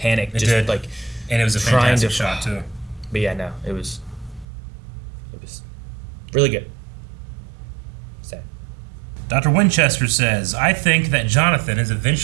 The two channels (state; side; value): drops out; left; at 4.5 s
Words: It just did. Like, and it was a fantastic shot too. But yeah, no, it was really good. Sad. Dr. Winchester says, I think that Jonathan is